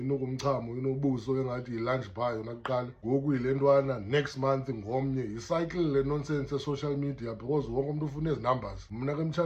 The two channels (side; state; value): both; identical; correlation 1.00